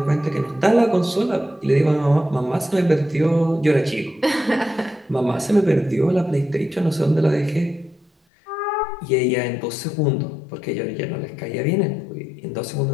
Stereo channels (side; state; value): right; drops out; at 8.1 s